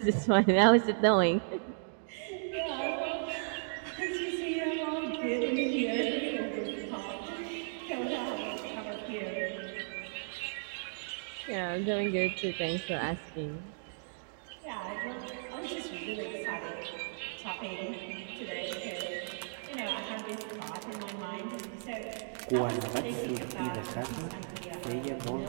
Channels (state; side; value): silent; left; digital silence